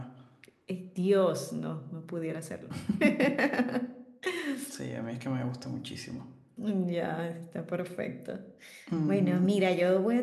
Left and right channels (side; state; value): both; identical; correlation 1.00